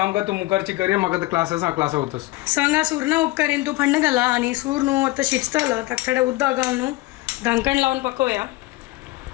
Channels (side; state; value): right; quieter; 19.6 dB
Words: कर तू मुखारची करे मग क्लासेस क्लास होतस सांगा सूर्ण उपकारीन तू फंड घाला आणि सूर न्हू आता शिजतलं तर थोडे उद्दा घालून न्हू ढांकण लावून पकवूया